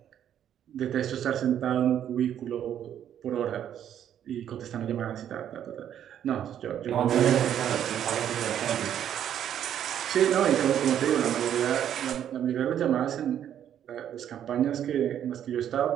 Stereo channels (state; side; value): quieter; left; 10.0 dB